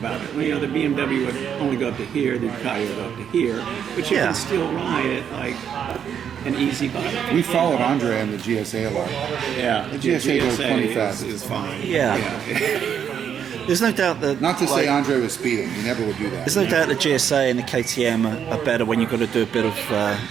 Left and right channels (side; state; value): left; quieter; 8.4 dB